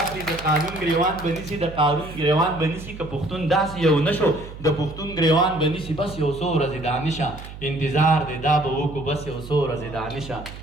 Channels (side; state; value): right; noise; hum, 13 dB below the sound